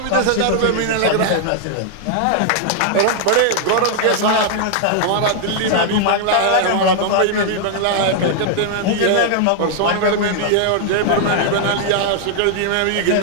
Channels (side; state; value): both; different; correlation 0.00